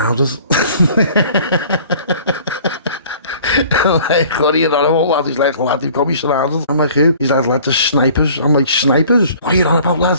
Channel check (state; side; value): inverted; both; correlation -0.50